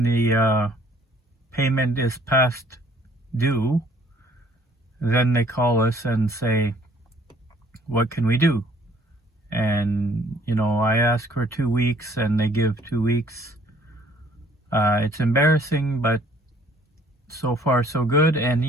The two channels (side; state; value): both; normal; correlation 0.59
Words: the payment is past due, then they call us and say, what can we do? And I ask for 2 weeks and they give 2 weeks. It's embarrassing, but so far so good. And